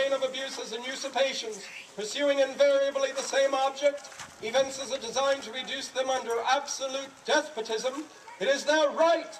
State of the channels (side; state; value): both; identical; correlation 1.00